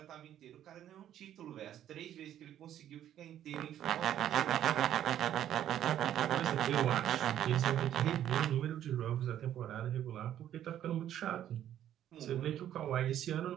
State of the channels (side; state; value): left; quieter; 11.1 dB